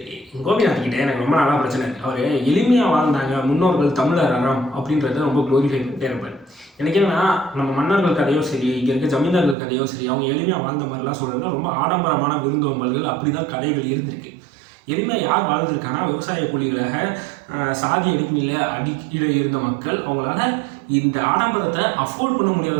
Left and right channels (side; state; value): left; drops out; at 9.6 s